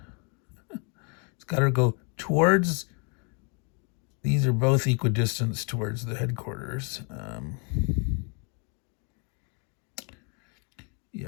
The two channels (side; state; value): right; quieter; 36.9 dB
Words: It's got to go towards. These are both equidistant towards the headquarters.